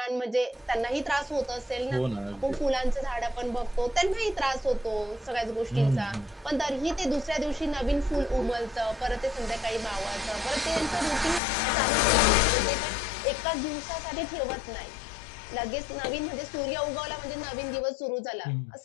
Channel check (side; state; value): right; drops out; at 11.4 s